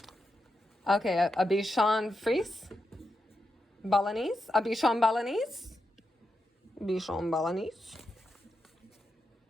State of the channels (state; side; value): normal; both; correlation 0.86